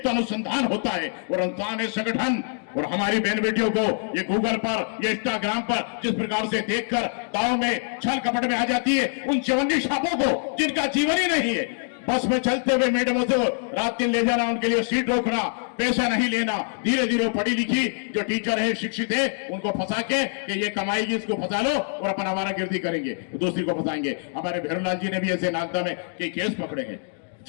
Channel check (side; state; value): right; silent; 62 dB below the other